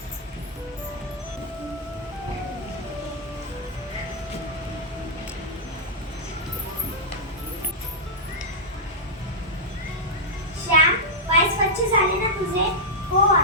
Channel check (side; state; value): both; normal; correlation -0.08